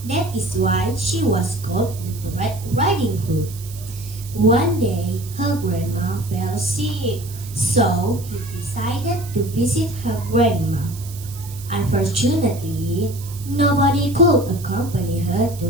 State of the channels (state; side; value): noise; right; hiss, 16 dB below the sound